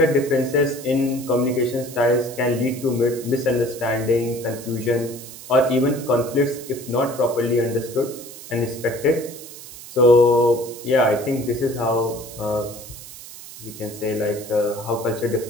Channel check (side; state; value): right; noise; hiss, 15 dB below the sound